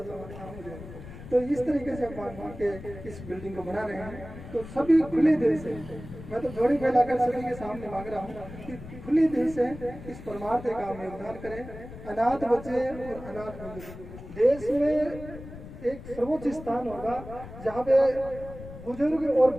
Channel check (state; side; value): noise; left; rumble, 13 dB below the sound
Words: सा काम हो जाए। तो इस तरीके से हम मान के इस बिल्डिंग को बना रहे हैं। तो सभी खुले दिल से, मैं तो जोड़ी फैलाकर सभी के सामने मांग रहा हूँ कि खुले दिल से इस परमार्थ काम में योगदान करें। अनाथ बच्चे और अनाथ बुजुर्ग देश में एक सर्वोच्च स्थान होगा जहाँ पे बुजुर्ग और